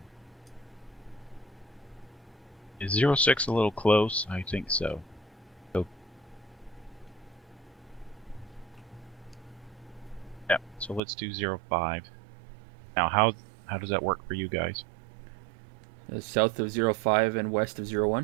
Is 06 a little close? I think so. Yeah, so let's do 05. Now, how does that work for you guys? South of 05 and west of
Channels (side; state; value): left; drops out; at 11.0 s